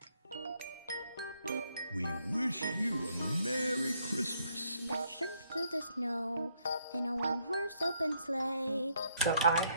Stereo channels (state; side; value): inverted; both; correlation -0.72